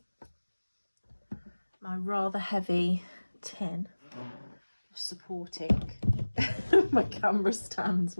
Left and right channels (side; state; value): both; inverted; correlation -1.00